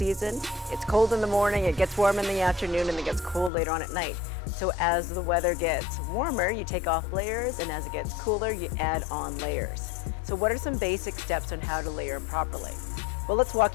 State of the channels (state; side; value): drops out; right; at 3.5 s